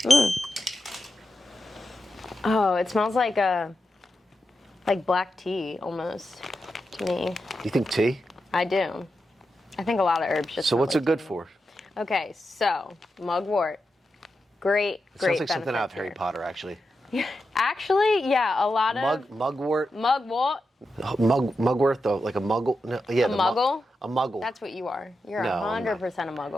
Oh, it smells like black tea, almost, to me. You think tea? I do. I think a lot of herbs just So smell what's like it good tea. for? Okay, so, mugwort. Great Sounds like something out of benefits Harry here. Potter, actually. Actually, yeah, a lot of... Mugwort. Mugwort. Mugwort, though, like a muggle. No, yeah, A muggle? A muggle. That's what you are. You're No, I'm 100% a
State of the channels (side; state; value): both; normal; correlation 0.88